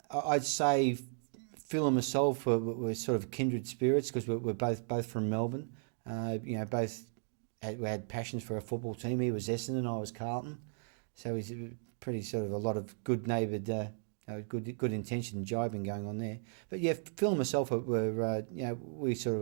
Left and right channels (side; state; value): left; silent; digital silence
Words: I'd say Phil and myself were sort of kindred spirits because we're both from Melbourne. You know, both had passions for a football team. He was Essendon, I was Carlton, so he's pretty sort of a lot of good-neighboured. Good intention jibing going on there, but yeah, Phil and myself were you know, we